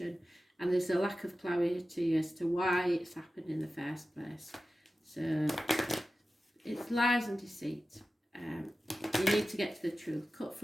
and there's a lack of clarity as to why it's happened in the first place. So it's lies and deceit. You need to get to the truth, cut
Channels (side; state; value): both; normal; correlation 0.94